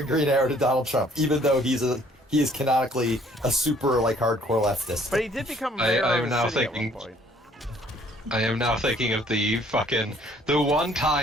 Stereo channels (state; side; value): normal; both; correlation 0.60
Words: Green Arrow to Donald Trump, even though he is canonically a super like hardcore leftist. But he did become mayor I'm of now a city at one thinking- point. I am now thinking of the one